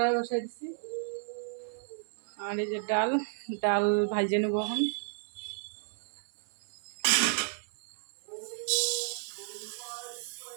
বসাই দিছি, আর এই যে ডাল ডাল ভাজিয়ে নেবো এখন।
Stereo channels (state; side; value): silent; left; 56 dB below the other